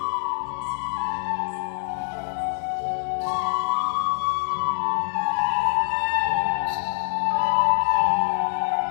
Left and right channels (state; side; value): silent; right; digital silence